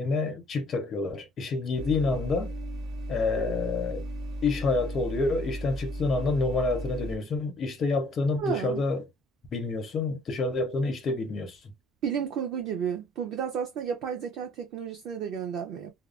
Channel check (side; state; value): both; normal; correlation 0.59